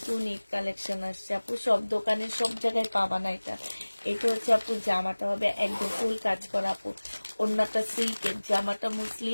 ঈদ কালেকশন আসছে আপু, সব দোকানে সব জায়গায় পাবা না এটা। এটা হচ্ছে আপু জামাটা হবে একদম ফুল কাজ করা আপু, ওড়নাটা সিল্কের, জামাটা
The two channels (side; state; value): both; inverted; correlation -1.00